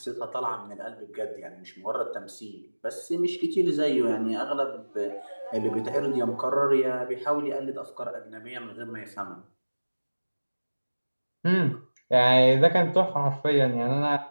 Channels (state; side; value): inverted; both; correlation -1.00